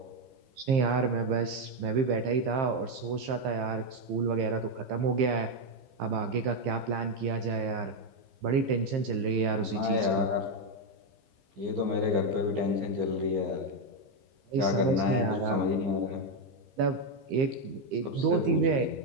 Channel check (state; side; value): late; left; 15 ms